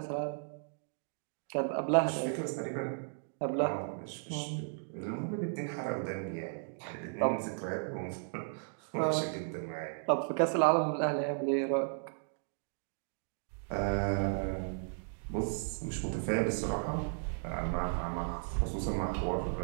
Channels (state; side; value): silent; left; digital silence